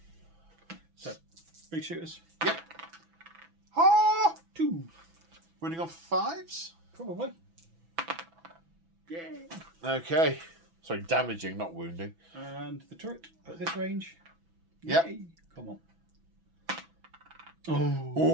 So, big shooters. Yep. Ah! 2. Running on 5s? Probably. Yeah. Okay. Sorry, damaging, not wounding. And the turret at this range. Yep. Yay. Come on. Oh.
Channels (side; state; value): left; late; 6.0 ms